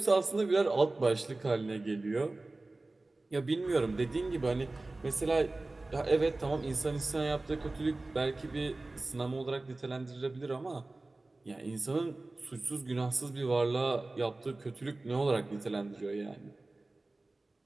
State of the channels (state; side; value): quieter; left; 3.0 dB